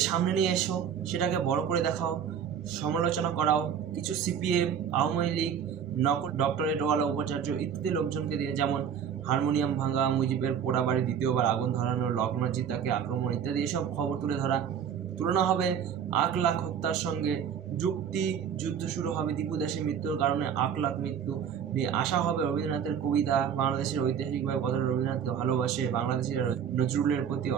সামনে নিয়ে এসো, সেটাকে বড় করে দেখাও, সমালোচনা করাও। কিছু সিপিএম, আওয়ামী লীগ, ডক্টরেটওয়ালা উপাচার্য ইত্যাদি লোকজনকে দিয়ে, যেমন হারমোনিয়াম ভাঙা, মুজিবের পোড়া বাড়ি দ্বিতীয়বার আগুন ধরানো, লগ্নজিৎ তাকে আক্রমণ ইত্যাদি এসব খবর তুলনা হবে 8 লাখ হত্যার সঙ্গে। যুদ্ধ শুরু হবে দীপু দাসের মৃত্যুর কারণে 8 লাখ মৃত্যু নিয়ে। আসা হবে রবীন্দ্রনাথের কবিতা, বাংলাদেশের ঐতিহাসিকভাবে কতটা রবীন্দ্রনাথকে ভালোবাসে, বাংলাদেশিরা নজরুলের প্রতি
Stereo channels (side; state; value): left; quieter; 8.1 dB